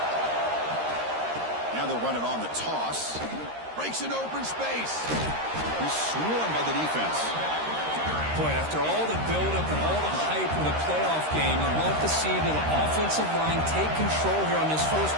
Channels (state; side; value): late; left; 13 ms